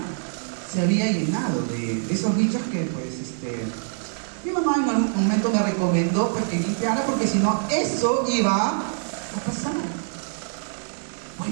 se había llenado de esos bichos que, pues, mi mamá en algún momento me recomendó pues, que limpiara, porque si no, eso iba a pasar.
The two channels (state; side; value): silent; left; digital silence